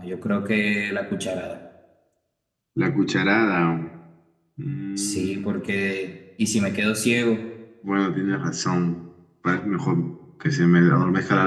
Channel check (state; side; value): identical; both; correlation 1.00